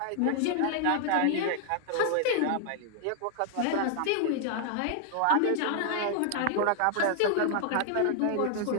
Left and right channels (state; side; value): different; both; correlation 0.00